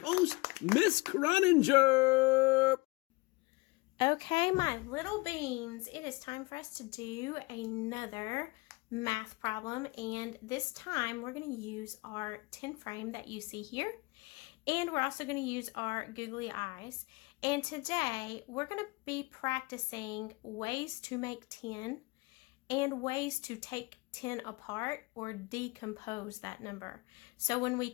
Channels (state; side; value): quieter; right; 24.9 dB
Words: Miss Croninger. Okay, my little beans, it is time for us to do another math problem, and this time we're going to use our 10 frame that you see here, and we're also going to use our googly eyes. And today we're going to be practicing ways to make 10 and ways to take 10 apart or decompose that number. So when we